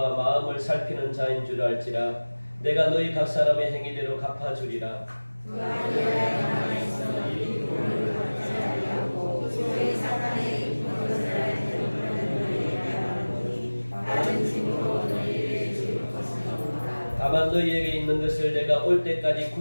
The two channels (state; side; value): inverted; both; correlation -1.00